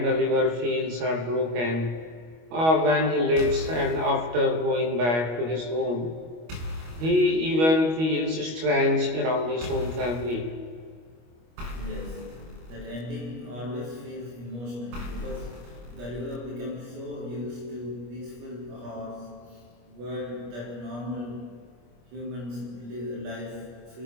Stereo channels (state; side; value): late; left; 25 ms